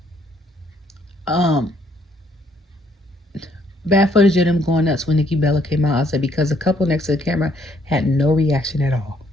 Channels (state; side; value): normal; both; correlation 0.67